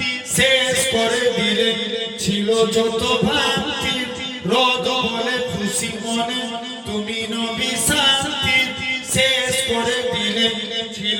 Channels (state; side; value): identical; both; correlation 1.00